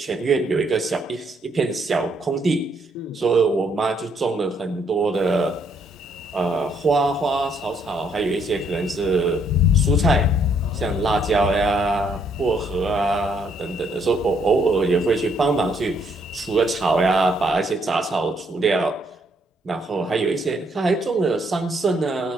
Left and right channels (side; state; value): both; normal; correlation 0.70